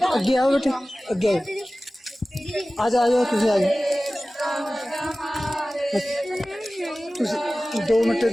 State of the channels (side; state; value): both; normal; correlation 0.97